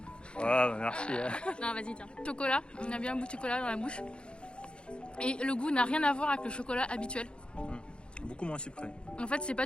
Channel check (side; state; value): right; late; 0.054 ms